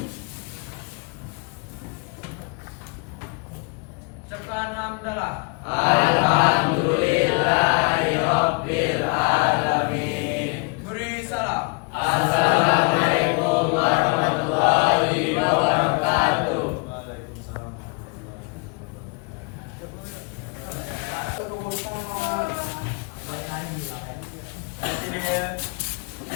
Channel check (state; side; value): quieter; right; 32.3 dB